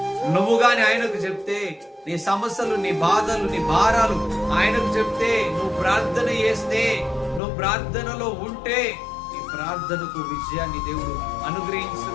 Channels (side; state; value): right; drops out; at 7.4 s